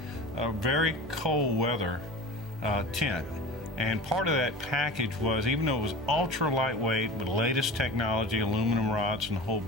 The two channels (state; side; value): normal; both; correlation 0.35